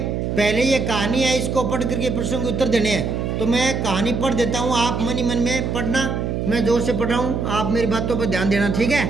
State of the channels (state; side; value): noise; right; hum, 1 dB below the sound